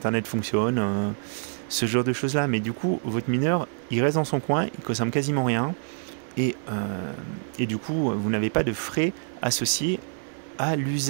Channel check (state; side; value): silent; left; digital silence